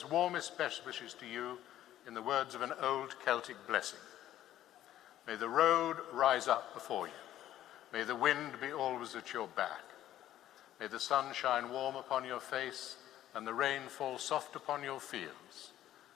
warmest best wishes to you in the words of an old Celtic blessing. May the road rise up before you. May the wind be always at your back. May the sun shine warm upon your face and the rain fall soft upon your fields.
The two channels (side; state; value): right; quieter; 12.7 dB